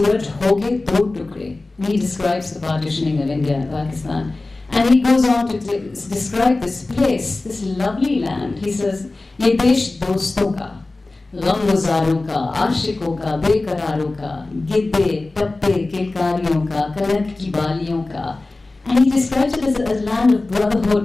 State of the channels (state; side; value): quieter; right; 3.1 dB